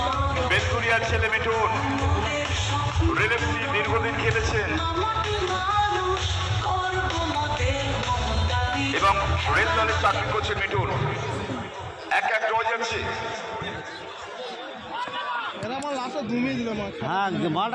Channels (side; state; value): both; identical; correlation 1.00